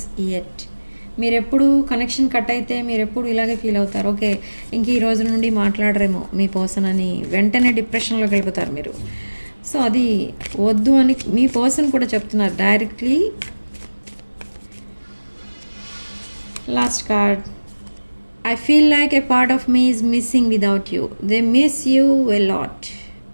yet. మీరు ఎప్పుడు connection cut అయితే మీరు ఎప్పుడు ఇలాగే ఫీల్ అవుతారు. ఓకే, ఇంక ఈ రోజు నుండి మాట్లాడరేమో మీ పర్సన్ అని వెంటనే డిప్రెషన్లోకి వెళ్ళిపోతారు మీరు. సో అది వద్దు అని మీ పర్సన్ కూడా చెప్తున్నారు directly. Last card. I feel like a part of me is missing without you. They miss you a lot.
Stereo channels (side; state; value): both; inverted; correlation -1.00